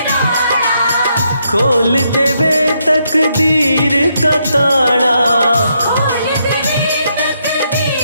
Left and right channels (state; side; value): inverted; both; correlation -0.77